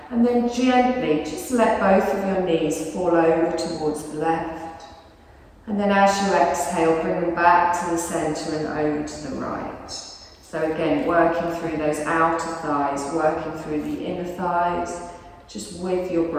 And then gently just let both of your knees fall over towards the left. And then as you exhale, bring them back to the centre and over to the right. So again, working through those outer thighs, working through the inner thighs, just with your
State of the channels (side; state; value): both; identical; correlation 1.00